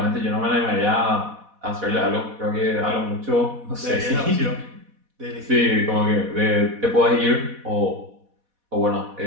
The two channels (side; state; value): left; late; 4.1 ms